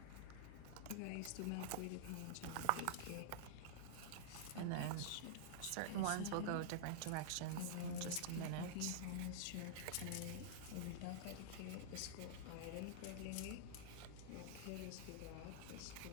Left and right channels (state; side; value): different; both; correlation -0.01